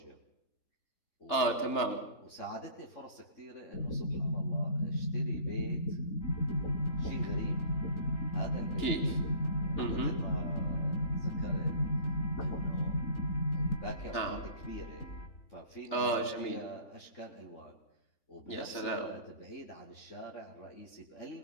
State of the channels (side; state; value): right; late; 3.4 ms